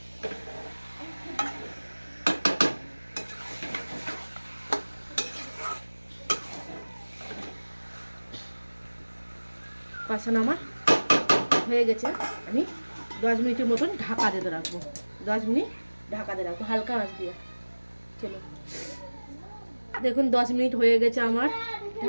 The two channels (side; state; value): both; inverted; correlation -1.00